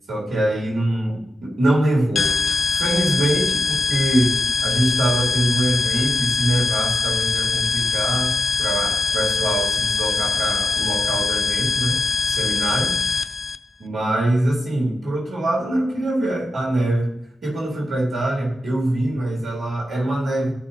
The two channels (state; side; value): normal; both; correlation 0.88